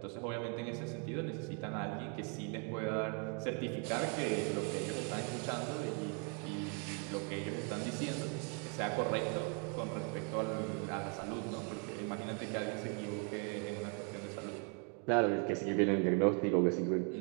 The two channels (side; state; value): left; quieter; 35.8 dB